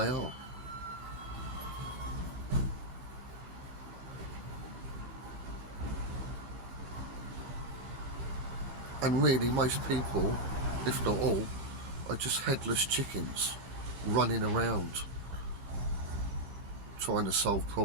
are. And really most people, if not all, are just headless chickens running around trying to solve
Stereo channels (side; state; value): left; late; 16 ms